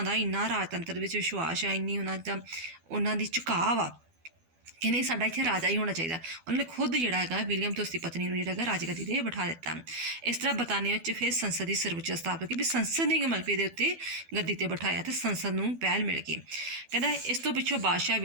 ਦਾ ਇੰਨਾ ਰਾਜਤੰਤਰ ਵਿੱਚ ਵਿਸ਼ਵਾਸ ਆ, ਇੰਨੀ ਉਹਨਾਂ ਦੀ ਝੁਕਾਅ ਆ ਕਿ ਨਹੀਂ ਸਾਡਾ ਇੱਥੇ ਰਾਜਾ ਹੀ ਹੋਣਾ ਚਾਹੀਦਾ। ਉਹਨਾਂ ਨੇ ਖੁਦ ਜਿਹੜਾ ਹੈਗਾ ਵਿਲੀਅਮ ਅਤੇ ਉਸਦੀ ਪਤਨੀ ਨੂੰ ਜਿਹੜਾ ਹੈਗਾ ਰਾਜਗੱਦੀ 'ਤੇ ਬਿਠਾ ਦਿੱਤਾ। ਇਸ ਤਰ੍ਹਾਂ ਬਰਤਾਨੀਆ ਵਿੱਚ ਫਿਰ ਸੰਸਦ ਦੀ ਸਰਵਉੱਚ ਸਥਾਪਤ ਹੋਈ ਵੀ ਸੰਸਦ ਨੇ ਮਲਬੇ ਦੇ ਉੱਤੇ ਗੱਦੀ 'ਤੇ ਬਿਠਾਇਆ ਅਤੇ ਸੰਸਦ ਨੂੰ ਪਹਿਲ ਮਿਲ ਗਈ। ਕਹਿੰਦਾ ਇਸ ਤੋਂ ਪਿੱਛੋਂ ਬਾਦਸ਼ਾਹ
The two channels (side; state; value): left; late; 12 ms